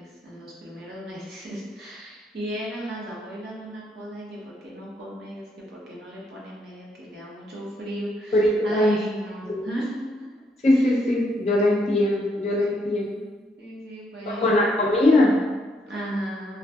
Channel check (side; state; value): both; normal; correlation 0.74